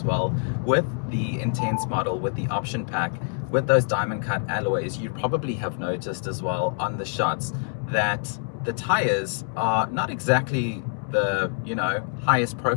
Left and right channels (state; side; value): silent; right; 61 dB below the other